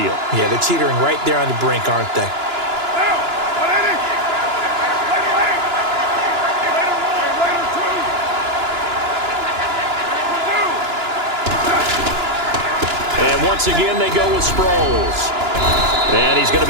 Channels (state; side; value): late; left; 2.9 ms